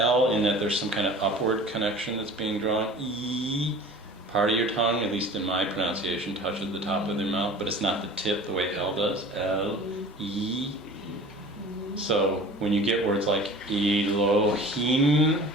in that there's some kind of upward connection that's being drawn. E. Part of your tongue, at least in my pronunciation, touches the top of their mouth, but it's not the tip the way L does. L. E. So when you get words like Elohim,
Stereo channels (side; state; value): both; normal; correlation 0.42